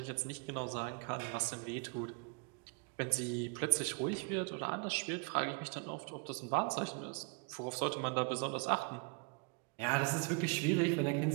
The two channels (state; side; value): quieter; left; 33.3 dB